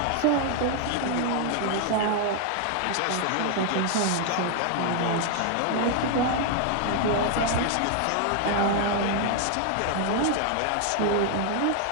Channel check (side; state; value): both; different; correlation 0.00